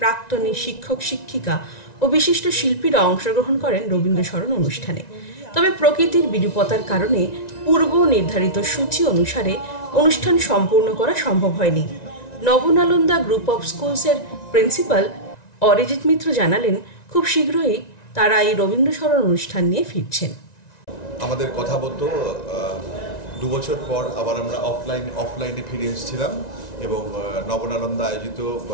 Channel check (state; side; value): late; right; 1.9 ms